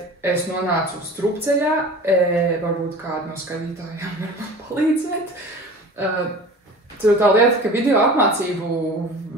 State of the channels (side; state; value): both; normal; correlation 0.38